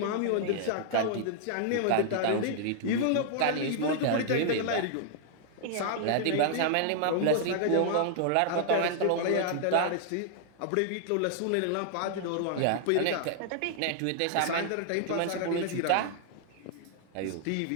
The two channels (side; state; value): both; different; correlation -0.01